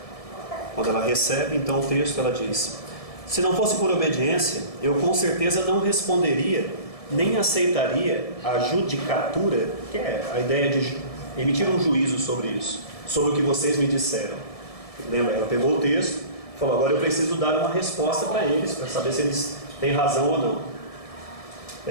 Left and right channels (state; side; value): late; right; 1.7 ms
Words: Quando ela recebe, então, o texto, ela diz: se não fosse por obediência, eu com certeza não responderia, nem aceitaria a judicatura, que é a ideia de emitir um juízo sobre isso, sobre o que vocês me disseram. Lembra, ela pegou o texto, falou: agora eu preciso dar uma resposta para eles, para saber se eles têm razão ou não.